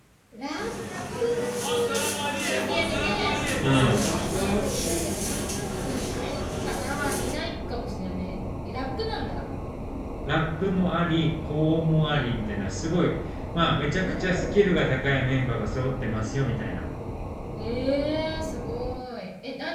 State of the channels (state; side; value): identical; both; correlation 1.00